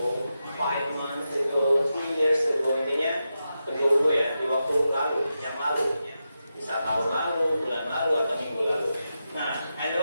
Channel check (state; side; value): inverted; both; correlation -0.89